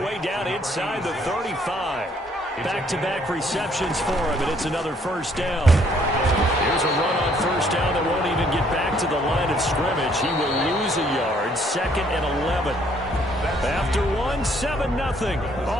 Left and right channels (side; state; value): both; normal; correlation 0.65